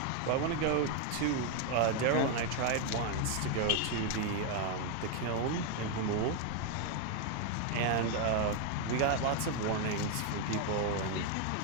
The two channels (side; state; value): both; different; correlation 0.01